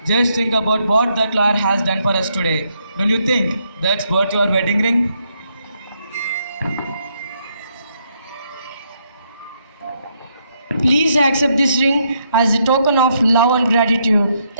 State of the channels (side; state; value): both; inverted; correlation -0.76